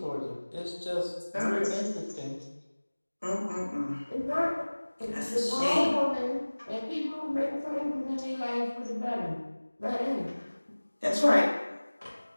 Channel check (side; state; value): both; inverted; correlation -1.00